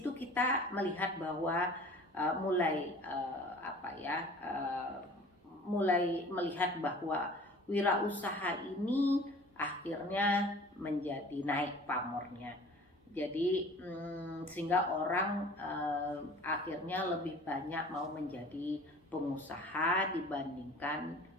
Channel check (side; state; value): both; normal; correlation 0.46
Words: kita melihat bahwa mulai melihat bahwa wirausaha ini akhirnya menjadi naik pamornya. Jadi sehingga orang akhirnya lebih banyak mau menjadi pengusaha dibandingkan